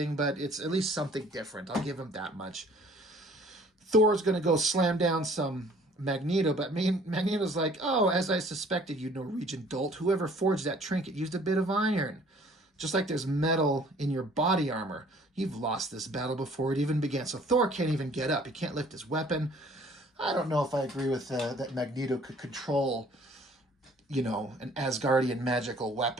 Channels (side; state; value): both; normal; correlation 0.55